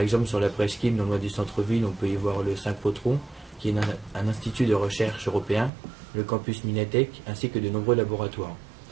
sur la presqu'île, non loin du centre-ville, on peut y voir le Synchrotron, qui est un institut de recherche européen, le campus Minatech, ainsi que de nombreux laboratoires.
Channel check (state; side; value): drops out; left; at 5.7 s